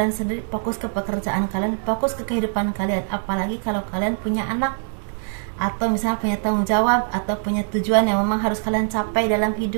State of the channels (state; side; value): silent; left; digital silence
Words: sendiri, fokus ke pekerjaan kalian, fokus ke kehidupan kalian. Apalagi kalau kalian punya anak, atau misalnya punya tanggung jawab, atau punya tujuan yang memang harus kalian capai dalam